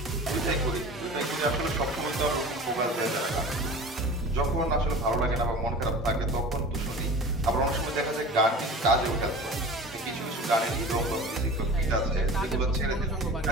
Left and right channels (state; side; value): normal; both; correlation 0.38